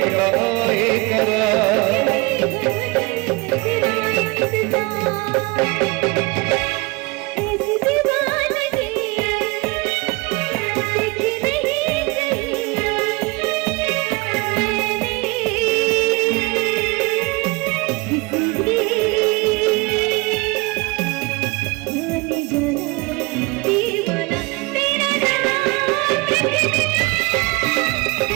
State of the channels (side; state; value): left; quieter; 25.3 dB